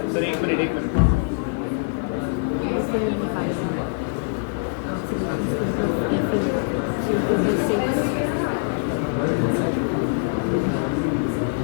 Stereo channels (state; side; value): silent; right; digital silence